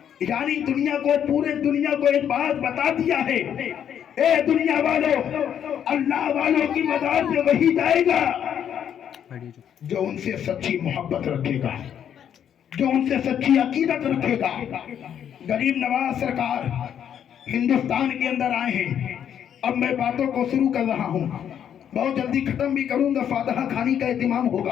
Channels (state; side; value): quieter; right; 9.1 dB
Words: یعنی دنیا کو، پورے دنیا کو ایک بات بتا دیا ہے، اے دنیا والوں، اللہ والوں کی مزار پہ وہی جائے گا جو ان سے سچی محبت رکھے گا، جو ان سے سچی عقیدت رکھے گا۔ غریب نواز سرکار ہندوستان کے اندر آئے ہیں، اب میں باتوں کو شروع کر رہا ہوں، بہت جلدی ختم بھی کروں گا، فاتحہ خانی کا اہتمام